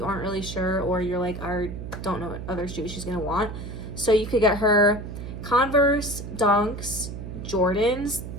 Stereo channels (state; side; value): noise; right; hum, 8 dB below the sound